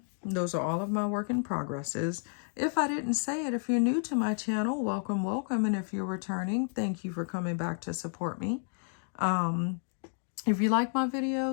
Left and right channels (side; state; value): right; silent; 57 dB below the other